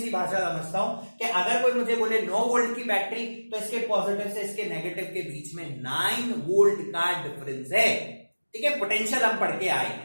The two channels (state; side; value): inverted; both; correlation -1.00